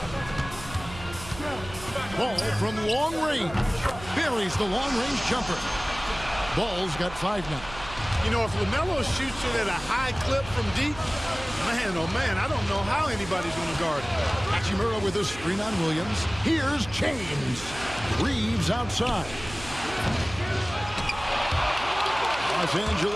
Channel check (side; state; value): right; noise; hum, 14 dB below the sound